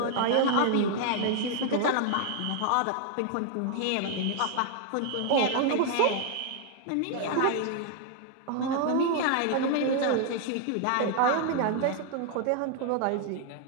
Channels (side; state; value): both; different; correlation 0.00